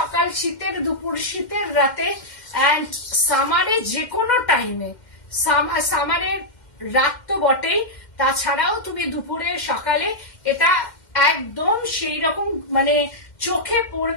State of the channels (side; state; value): right; late; 2.1 ms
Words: শীতের দুপুর, শীতের রাতে অ্যান্ড সামারে যে কোনো টাইমে, সামারের রাত তো বটেই, তাছাড়াও তুমি দুপুরে সকালে এটা একদম সেই রকম মানে চোখে